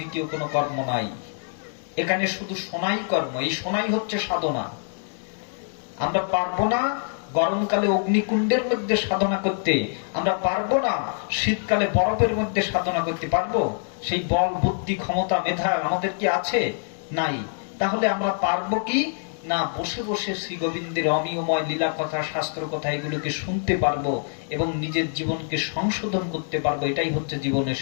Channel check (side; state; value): right; silent; digital silence